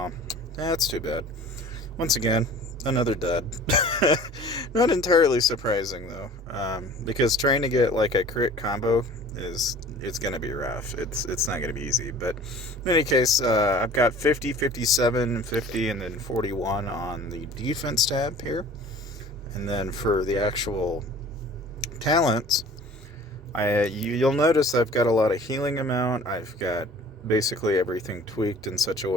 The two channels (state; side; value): normal; both; correlation 0.46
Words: that's too bad. Once again, another dud. Not entirely surprising though, because trying to get like a crit combo it's gonna be rough. It's not gonna be easy. But in any case, I've got 50, 57, 50, and then 41 on the defense tab here. And then for the actual talents, you'll notice I've got a lot of healing amount. I've got basically everything tweaked in such a